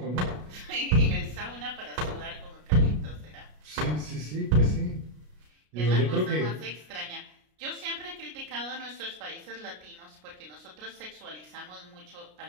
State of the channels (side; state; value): left; late; 33 ms